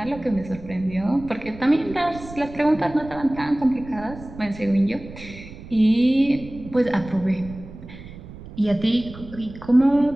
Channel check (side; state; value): right; noise; rumble, 15 dB below the sound